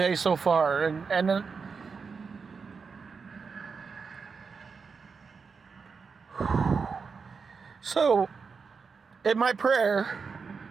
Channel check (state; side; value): quieter; left; 5.3 dB